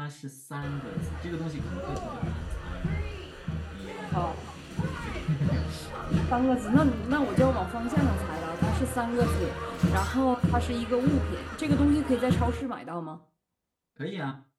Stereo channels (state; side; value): identical; both; correlation 1.00